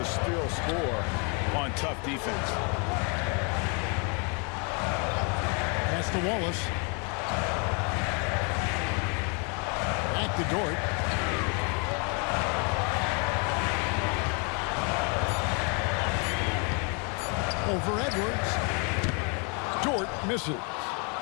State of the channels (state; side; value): quieter; right; 35.4 dB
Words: still score on tough defense. Pass to Wallace. Back to Dort. Over Edwards. Dort misses.